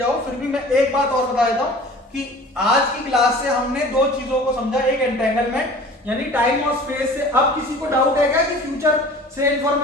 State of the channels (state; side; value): normal; both; correlation 0.44